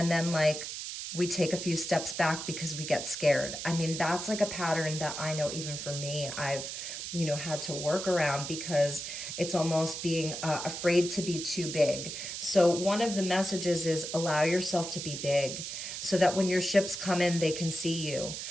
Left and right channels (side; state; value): right; noise; hiss, 6 dB below the sound